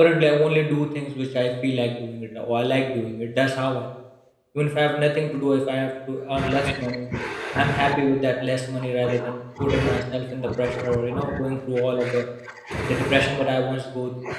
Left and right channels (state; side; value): identical; both; correlation 1.00